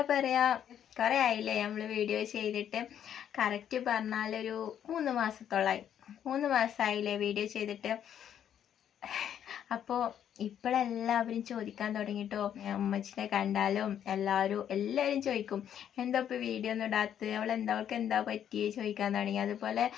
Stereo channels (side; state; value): right; quieter; 9.6 dB